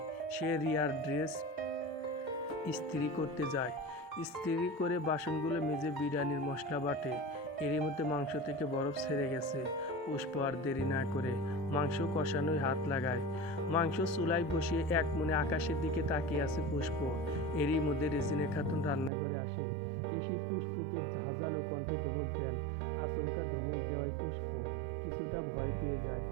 সে রিয়ার ড্রেস ইস্ত্রি করতে যায়। ইস্ত্রি করে বাসনগুলো মেজে বিরিয়ানির মশলা বাটে। এরই মধ্যে মাংস থেকে বরফ ছেড়ে গেছে। পুষ্প আর দেরি না করে মাংস কষানোয় হাত লাগায়। মাংস চুলায় বসিয়ে এক মনে আকাশের দিকে তাকিয়ে আছে পুষ্প। এরই মধ্যে রেজিনা খাতুন রান্নাঘরে আসেন। এসে পুষ্পকে ঝাঁঝালো কণ্ঠে ধমক দেন। আচমকা ধমক দেওয়ায় পুষ্প কিছুটা ভয় পেয়ে যায়।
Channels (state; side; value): drops out; left; at 19.1 s